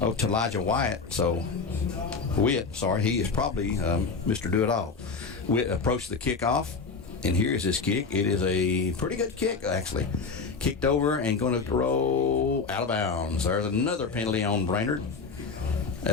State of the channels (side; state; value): right; quieter; 4.7 dB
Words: to Elijah Wyatt. So, Witt, sorry, he is probably Mr. Do-It-All. Witt approached the kickoff, and here's his kick. It is a pretty good kick, actually. Kicked over and going to roll out of bounds. There's another penalty on Brainerd.